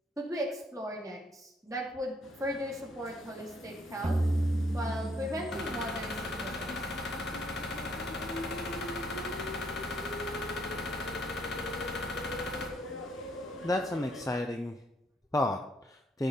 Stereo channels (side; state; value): both; normal; correlation 0.69